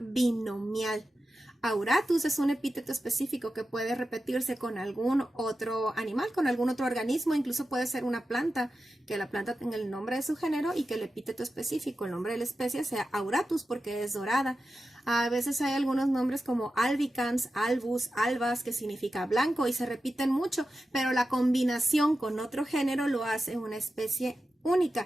Auratus es un epíteto específico que puede repetirse con algún otro animal, con algún otro organismo, incluso puede ser una planta, que la planta tenga el nombre de su género y que el epíteto específico, el nombre de la especie, sea Auratus porque es dorada. A veces hay algunos nombres como albicans, albus, albas, que significa blanco y se repiten mucho, pero la combinación con otro género lo hace una especie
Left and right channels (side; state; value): both; normal; correlation 0.91